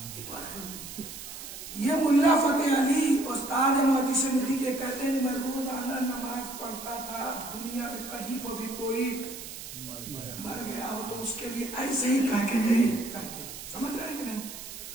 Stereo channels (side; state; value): right; noise; hiss, 11 dB below the sound